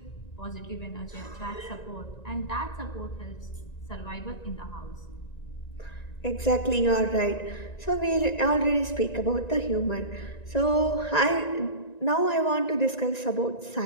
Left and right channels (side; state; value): right; late; 1.9 ms